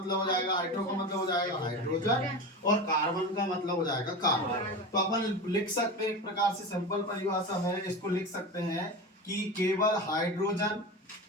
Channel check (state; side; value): normal; both; correlation 0.26